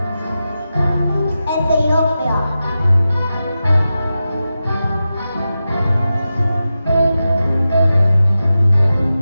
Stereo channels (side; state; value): both; inverted; correlation -0.92